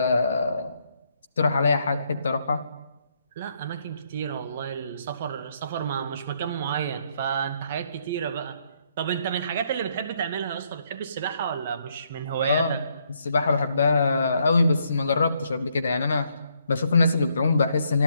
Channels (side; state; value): both; inverted; correlation -0.73